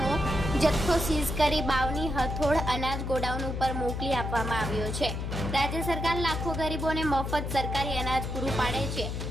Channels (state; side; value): noise; left; hum, 4 dB below the sound